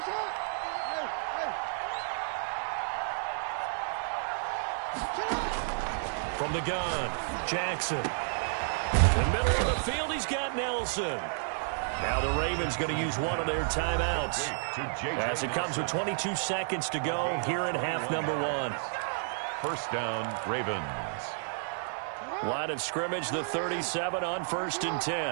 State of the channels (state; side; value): silent; left; 57 dB below the other